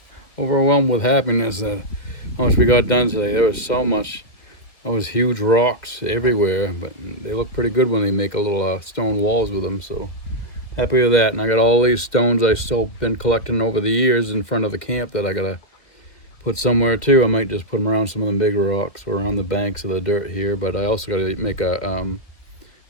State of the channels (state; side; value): late; right; 2.2 ms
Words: overwhelmed with happiness at how much we got done today. There was so much. There was huge rocks everywhere, but they look pretty good when they make a little stone walls with them. So happy with that. And I got all these stones I've still been collecting over the years in front of the camp that I gotta put somewhere too. I might just put them around some of them big rocks or around the banks of the dirt here, but I also got to make a